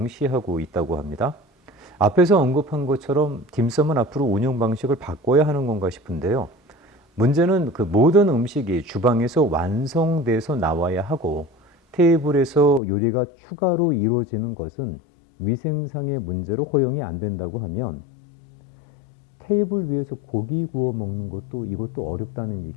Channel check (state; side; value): drops out; right; at 12.8 s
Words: 있다고 합니다. 앞에서 언급한 것처럼 딤섬은 앞으로 운영 방식을 바꿔야 하는 건가 싶은데요. 문제는 그 모든 음식이 주방에서 완성돼서 나와야 하고 테이블에서 요리가 추가로 이루어지는 것은 위생상의 문제로 허용이 안 된다고 하면 테이블 위에서 고기 구워 먹는 것도 이것도 어렵다는